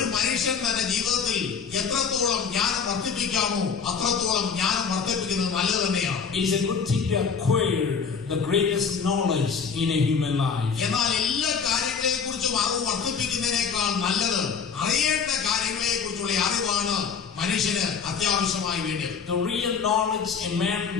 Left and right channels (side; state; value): right; quieter; 6.1 dB